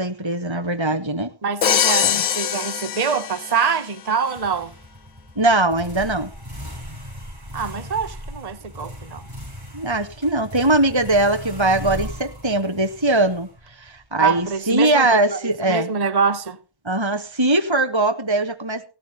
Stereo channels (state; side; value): late; left; 1.1 ms